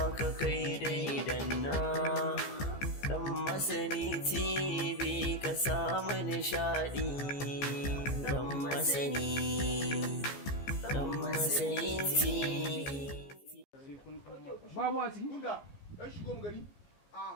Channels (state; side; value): late; right; 15 ms